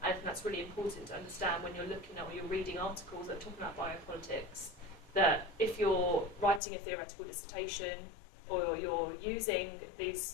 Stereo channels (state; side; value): drops out; right; at 6.6 s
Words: And I think that's really important to understand when you're looking at or you're reading articles that are talking about biopolitics, that if you're writing a theoretical dissertation or you're using these